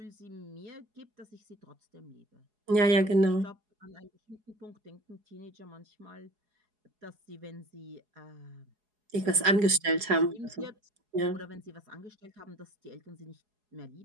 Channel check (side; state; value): left; late; 4.8 ms